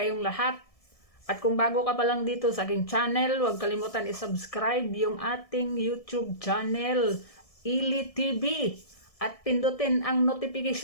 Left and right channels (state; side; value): late; right; 1.7 ms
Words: lahat. At kung bago ka pa lang dito sa aking channel, huwag kalimutan i-subscribe yung ating YouTube channel, Ili TV. At pindutin ang